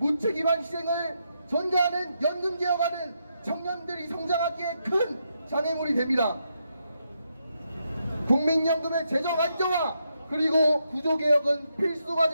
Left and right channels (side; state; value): both; inverted; correlation -0.81